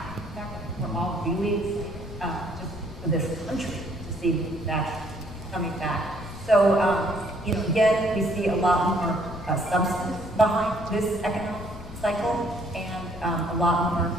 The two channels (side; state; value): left; noise; rumble, 14 dB below the sound